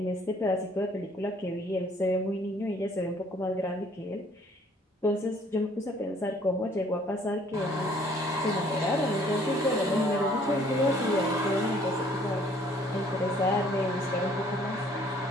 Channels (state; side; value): normal; both; correlation 0.59